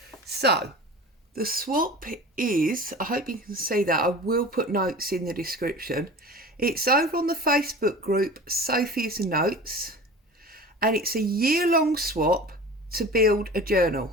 So the swap is, I hope you can see that, I will put notes in the description. It's over on the Facebook group Sophie's Notes, and it's a year-long swap to build a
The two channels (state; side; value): normal; both; correlation 0.37